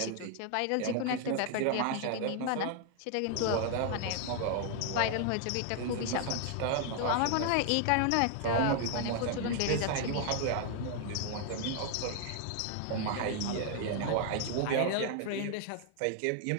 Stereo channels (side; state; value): both; different; correlation 0.00